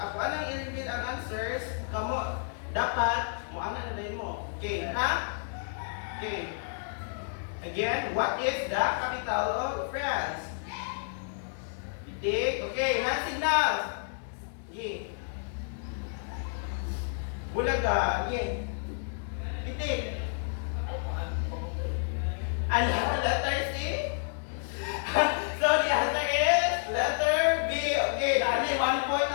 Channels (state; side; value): silent; right; digital silence